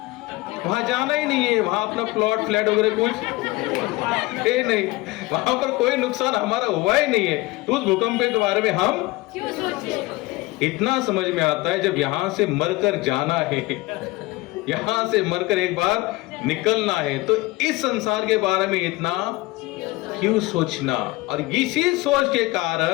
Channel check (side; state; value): right; quieter; 20.9 dB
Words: वहां जाना ही नहीं है, वहां अपना प्लॉट फ्लैट वगैरह कुछ है नहीं, वहां पर कोई नुकसान हमारा हुआ ही नहीं है, तो उस भूकंप के बारे में हम क्यों सोचे? इतना समझ में आता है जब यहां से मरकर जाना है, यहां से मरकर एक बार निकलना है, तो इस संसार के बारे में इतना क्यों सोचना? और इसी सोच के